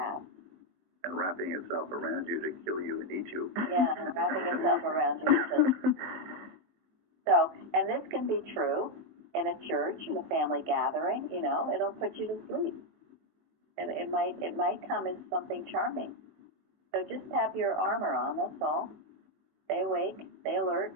And wrapping itself around you to kill you and eat you. Yeah, wrapping itself around you. So, and this can be true in a church, in a family gathering. You know, it'll put you to sleep. It might come as something charming. So just have your armor on. That's all. Stay awake. Stay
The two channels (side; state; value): left; late; 21 ms